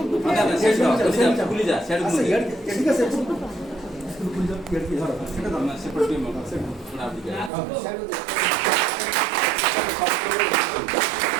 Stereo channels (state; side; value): drops out; left; at 7.5 s